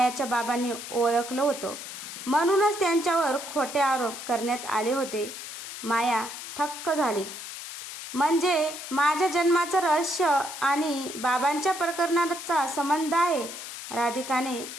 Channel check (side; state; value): left; noise; hiss, 10 dB below the sound